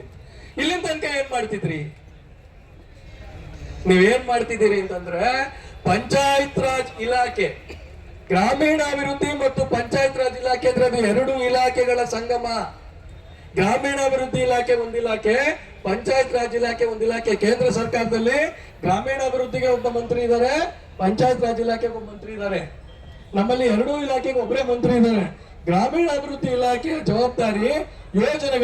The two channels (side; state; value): both; identical; correlation 1.00